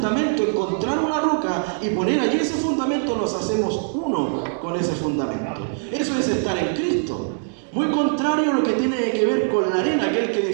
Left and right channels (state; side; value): silent; left; digital silence